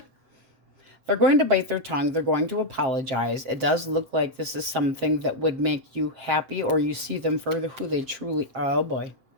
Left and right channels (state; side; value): late; left; 7.5 ms